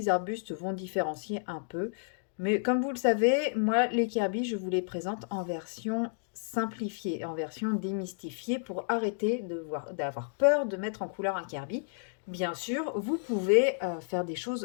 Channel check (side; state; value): right; silent; digital silence